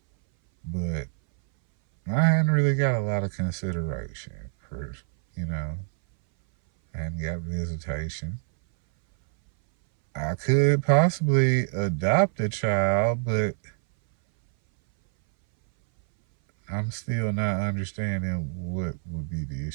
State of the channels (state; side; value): silent; left; 59 dB below the other